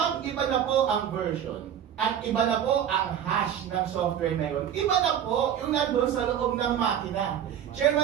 iba na po ang version at iba na po ang hash ng software na yun, iba na po yung nandun sa loob ng makina.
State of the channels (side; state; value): left; quieter; 9.5 dB